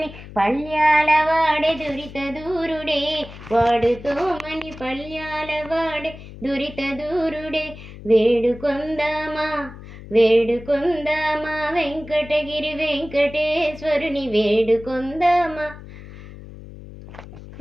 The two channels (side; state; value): left; noise; hum, 15 dB below the sound